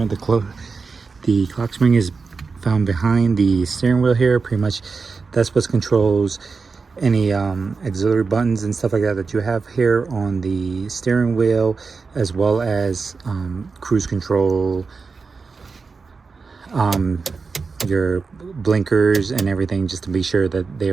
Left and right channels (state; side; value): quieter; left; 4.7 dB